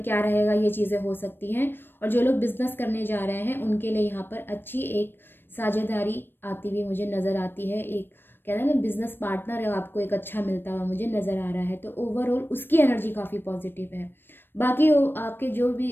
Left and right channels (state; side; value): late; right; 0.098 ms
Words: क्या रहेगा, ये चीज़ें हो सकती हैं। और जो लोग बिज़नेस करने जा रहे हैं उनके लिए यहाँ पर अच्छी एक साझेदारी आती हुई मुझे नज़र आती है। एक कहते हैं ना बिज़नेस पार्टनर है, आपको एक अच्छा मिलता हुआ मुझे नज़र आ रहा है। तो ओवरऑल उसकी एनर्जी काफ़ी पॉजिटिव है। बाकी आपके जो